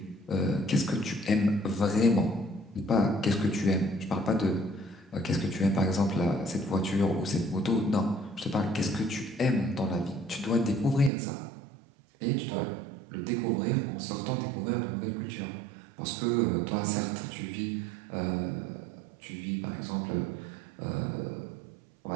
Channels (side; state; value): left; drops out; at 11.1 s